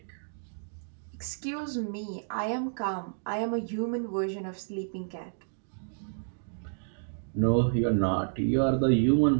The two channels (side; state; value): left; silent; digital silence